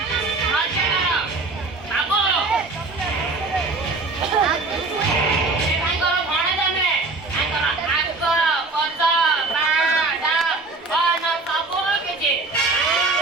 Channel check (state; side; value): quieter; left; 3.5 dB